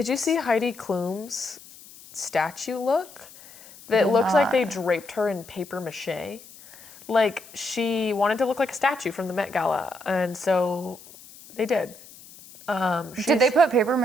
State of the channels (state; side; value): noise; left; hiss, 20 dB below the sound